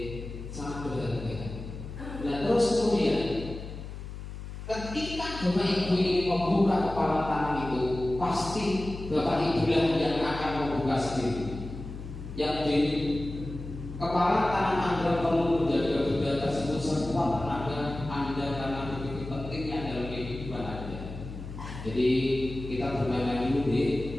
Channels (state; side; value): noise; left; hum, 10 dB below the sound